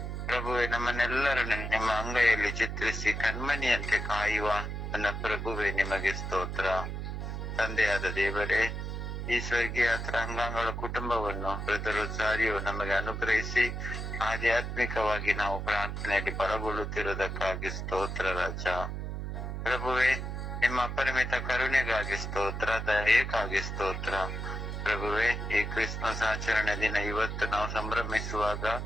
ಪ್ರಭುವೆ, ನಮ್ಮನ್ನೆಲ್ಲರನ್ನು ನಿಮ್ಮ ಅಂಗೈಯಲ್ಲಿ ಚಿತ್ರಿಸಿ ಕಣ್ಮಣಿಯಂತೆ ಕಾಯುವ ನನ್ನ ಪ್ರಭುವೆ ನಿಮಗೆ ಸ್ತೋತ್ರ. ತಂದೆಯಾದ ದೇವರೇ, ಈ ಸ್ವರ್ಗೀಯ ಅಂಗಾಂಗಳ ಕುಟುಂಬವನ್ನು ಬ್ರದರ್ ಸಾರಿಯು ನಮಗೆ ಅನುಗ್ರಹಿಸಿ ಆಧ್ಯಾತ್ಮಿಕವಾಗಿ ನಾವು ಪ್ರಾರ್ಥನೆಯಲ್ಲಿ ಬಲಗೊಳ್ಳುತ್ತಿರುವುದಕ್ಕಾಗಿ ಸ್ತೋತ್ರ ರಾಜ. ಪ್ರಭುವೆ, ನಿಮ್ಮ ಅಪರಿಮಿತ ಕರುಣೆಗಾಗಿ ಸ್ತೋತ್ರ, ದಯೆಗಾಗಿ ಸ್ತೋತ್ರ. ಪ್ರಭುವೆ, ಈ ಕ್ರಿಸ್ಮಸ್ ಆಚರಣೆ ದಿನ ಇವತ್ತು ನಾವು ಸಂಭ್ರಮಿಸುವಾಗ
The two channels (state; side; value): noise; right; hum, 4 dB below the sound